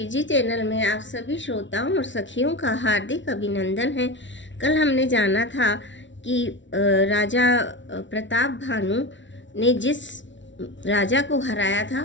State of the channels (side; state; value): right; late; 0.55 ms